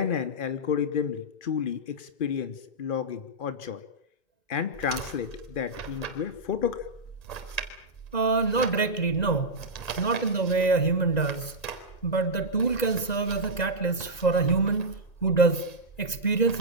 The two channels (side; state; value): right; late; 2.0 ms